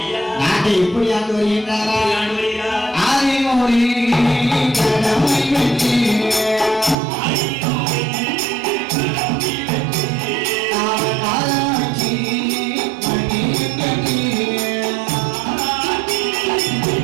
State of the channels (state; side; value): drops out; left; at 7.0 s